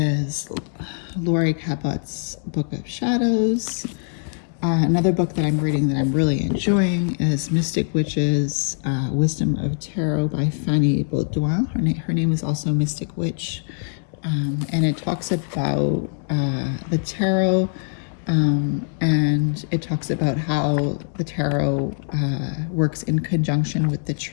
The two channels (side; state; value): right; silent; digital silence